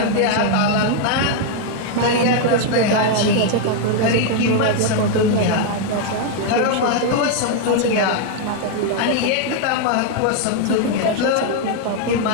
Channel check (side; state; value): both; different; correlation 0.00